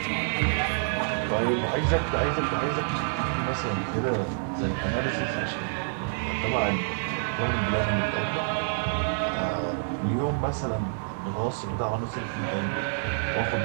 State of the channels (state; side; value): silent; left; 56 dB below the other